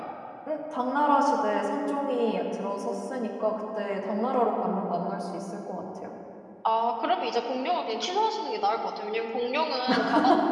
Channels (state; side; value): identical; both; correlation 1.00